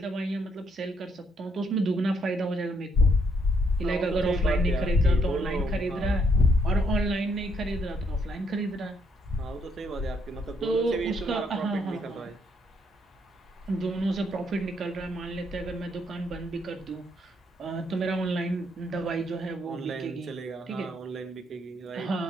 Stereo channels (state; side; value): normal; both; correlation 0.72